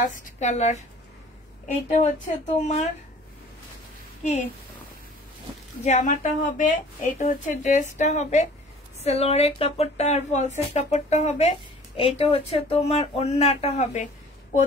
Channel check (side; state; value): both; normal; correlation 0.49